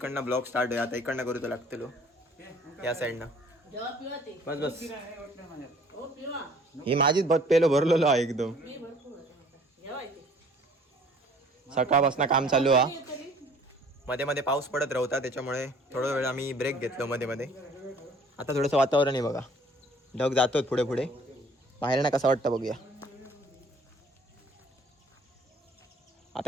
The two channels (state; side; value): normal; both; correlation 0.54